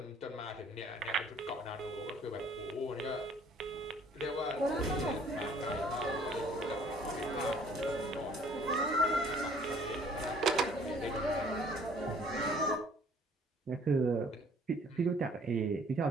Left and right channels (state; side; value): normal; both; correlation 0.57